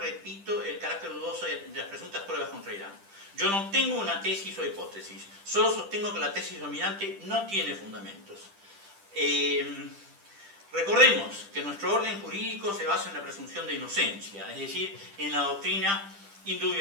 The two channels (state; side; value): late; left; 10 ms